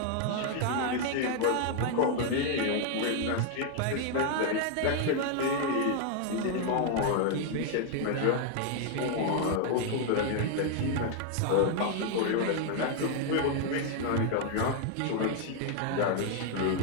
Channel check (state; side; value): different; both; correlation 0.00